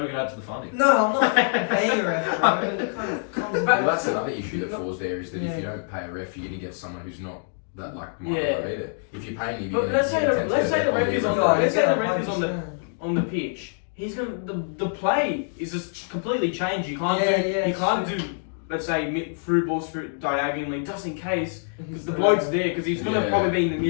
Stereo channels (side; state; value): right; silent; digital silence